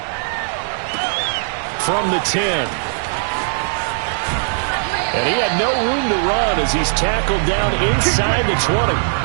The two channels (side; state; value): left; silent; 65 dB below the other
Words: From the 10. And he had no room to run as he's tackled down inside the 20.